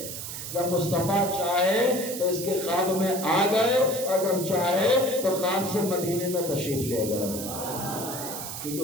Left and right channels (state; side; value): noise; right; hiss, 7 dB below the sound